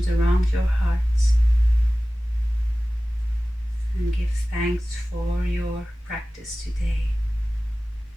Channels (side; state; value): both; normal; correlation 0.97